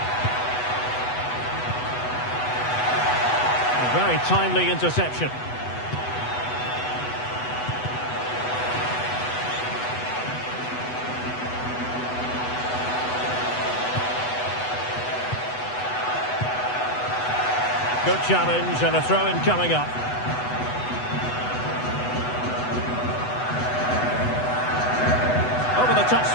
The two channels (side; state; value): right; late; 8.1 ms